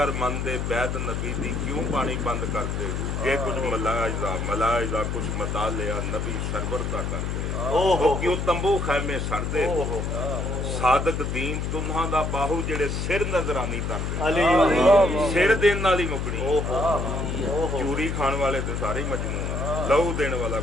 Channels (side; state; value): left; noise; hum, 2 dB below the sound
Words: مندے بیت نبی دی کیوں پانی بند کرتے ہو. جے کچھ ملاحظہ کچھ مطالعہ نبی سرور دا کرتے ہو, کیوں تمبو خیمے سڑدے ہو. صادق دین تنہاں دا باہو جڑے سر نظرانی تردے, سر دین والی مکڑی. چوری کھان والے تو سارے مجنون ہیں, لہو دین والا